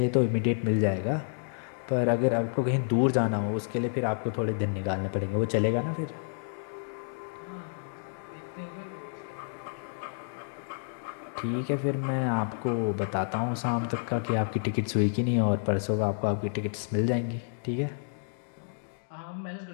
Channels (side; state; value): right; silent; digital silence